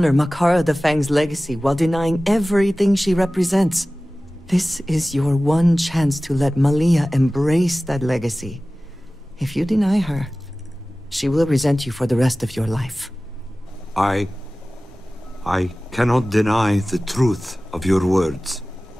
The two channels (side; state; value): both; normal; correlation 0.97